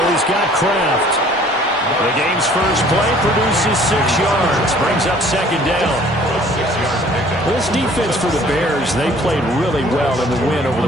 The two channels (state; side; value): normal; both; correlation 0.54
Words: He's got Kraft. The game's first play produces 6 yards. Brings up 2nd down. This defense for the Bears, they played really well in the win over